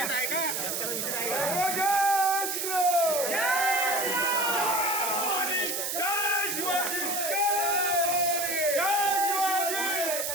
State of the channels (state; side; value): noise; right; hiss, 2 dB below the sound